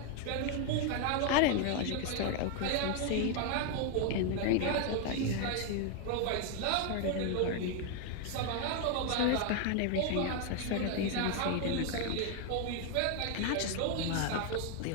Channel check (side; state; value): both; different; correlation 0.01